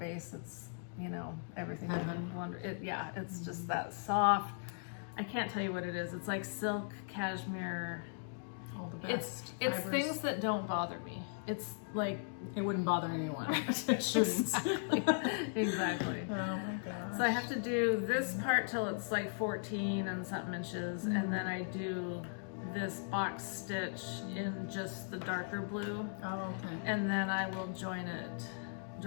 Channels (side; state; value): right; silent; digital silence